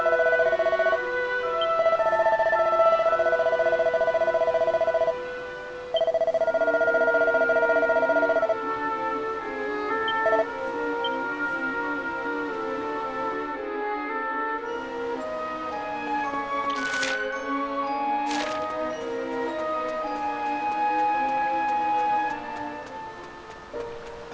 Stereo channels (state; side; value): identical; both; correlation 1.00